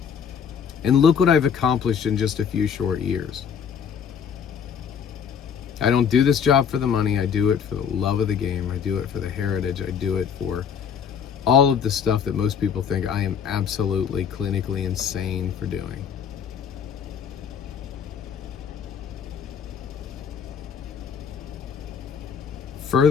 And look what I've accomplished in just a few short years. I don't do this job for the money. I do it for the love of the game. I do it for the heritage. I do it for all of the stuff that most people think I am absolutely clinically insane for doing.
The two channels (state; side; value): quieter; right; 7.3 dB